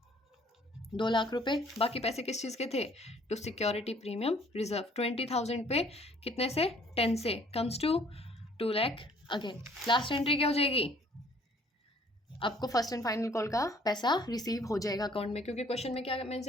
2 lakh रुपए। बाकी पैसे किस चीज़ के थे, टू सिक्योरिटी प्रीमियम रिजर्व। 20,000 पे कितने से, 10 से, comes to 2 lakh again. Last entry क्या हो जाएगी, आपको फर्स्ट एंड फाइनल कॉल का पैसा रिसीव हो जाएगा अकाउंट में, क्योंकि क्वेश्चन में क्या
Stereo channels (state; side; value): normal; both; correlation 0.59